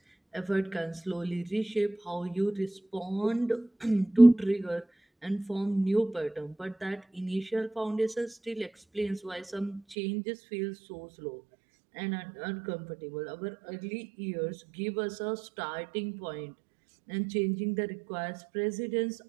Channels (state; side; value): drops out; left; at 10.0 s